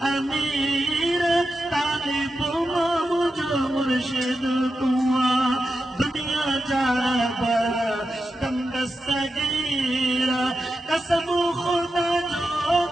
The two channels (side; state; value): both; normal; correlation 0.89